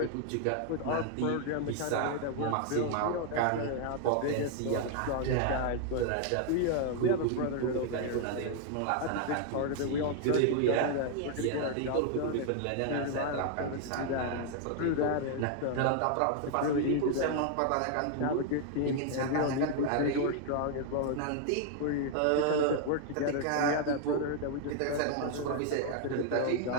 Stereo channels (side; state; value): both; different; correlation 0.00